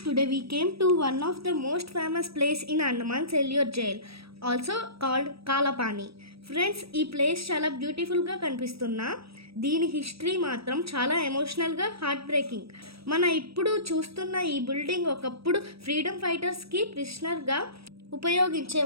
today we came to one of the most famous place in Andaman Cellular Jail, also called Kalapani. Friends ఈ place చాలా బ్యూటిఫుల్గా కనిపిస్తున్నా దీని history మాత్రం చాలా ఎమోషనల్గా హార్ట్ బ్రేకింగ్. మన ఇప్పుడు చూస్తున్న ఈ బిల్డింగ్ ఒకప్పుడు ఫ్రీడమ్ ఫైటర్స్కి ప్రిజనర్గా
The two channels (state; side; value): late; left; 0.77 ms